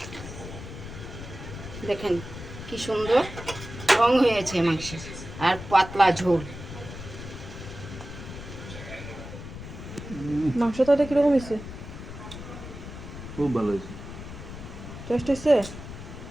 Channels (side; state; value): left; noise; rumble, 11 dB below the sound